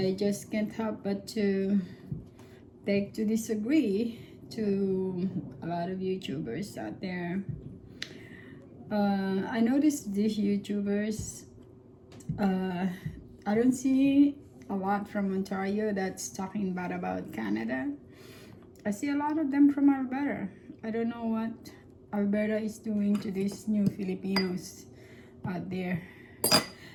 just can't help but to beg to disagree to a lot of YouTubers out there. I noticed these YouTubers. I don't see a lot from Ontario that's talking bad about Canada. I see a lot of them from Alberta. I don't know what Alberta is doing to these new Filipinos out there.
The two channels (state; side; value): identical; both; correlation 1.00